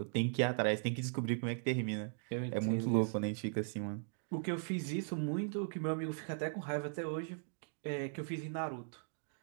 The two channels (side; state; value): left; silent; digital silence